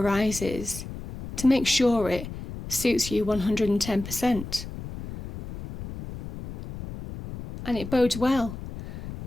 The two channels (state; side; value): noise; left; rumble, 11 dB below the sound